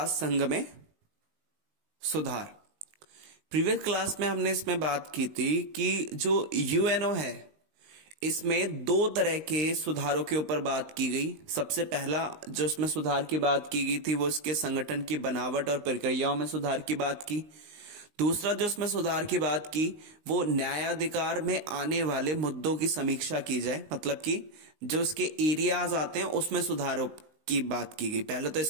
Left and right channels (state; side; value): late; left; 19 ms